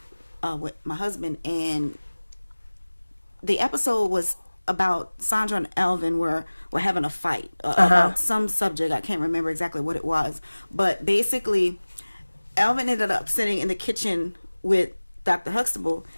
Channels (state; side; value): inverted; both; correlation -1.00